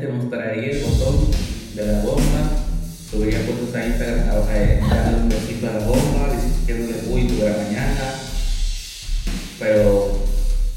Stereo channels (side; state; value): both; identical; correlation 1.00